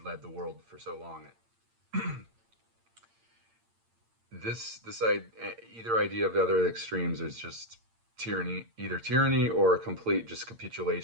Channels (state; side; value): late; left; 8.8 ms